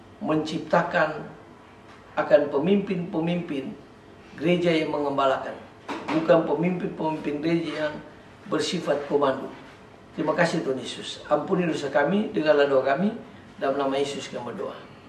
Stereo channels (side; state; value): both; identical; correlation 1.00